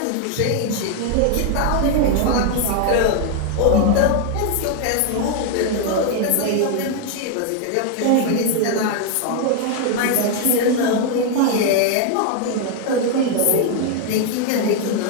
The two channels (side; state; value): both; different; correlation 0.00